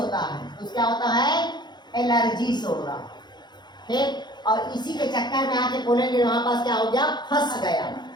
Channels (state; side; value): late; right; 0.21 ms